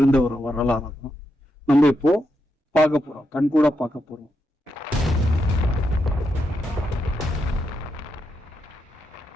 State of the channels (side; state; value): both; normal; correlation 0.83